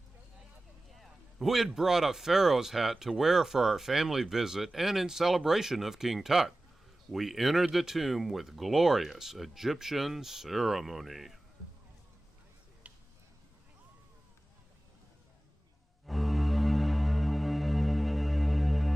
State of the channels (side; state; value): both; normal; correlation 0.96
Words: We had brought a pharaoh's hat to wear for our family visit and in celebration of King Tut. We entered the tomb with glorious Egyptian ceremony.